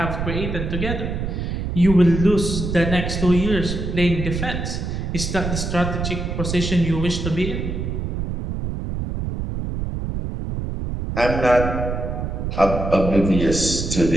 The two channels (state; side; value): noise; right; rumble, 3 dB below the sound